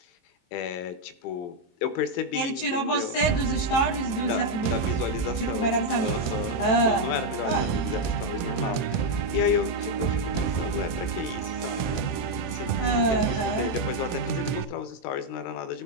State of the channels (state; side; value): late; right; 23 ms